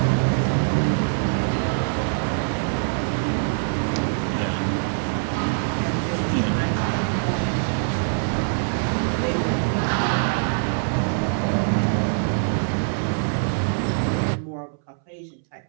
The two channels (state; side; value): silent; left; 63 dB below the other